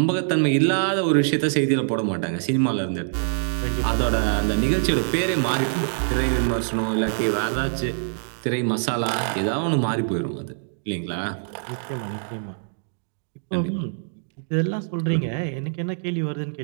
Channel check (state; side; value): silent; left; digital silence